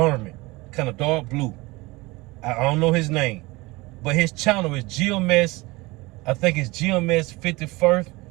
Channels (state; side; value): quieter; left; 22.6 dB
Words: kind of dark blue. I don't know his name, but his channel is GMS. I think it's GMS 51st